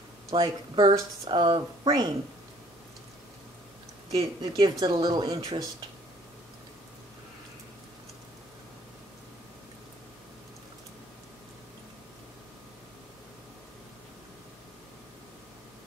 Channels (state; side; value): normal; both; correlation 0.58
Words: like bursts of rain. It gives it a little interest.